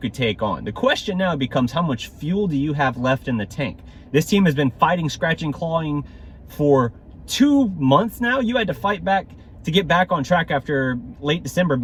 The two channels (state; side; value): identical; both; correlation 1.00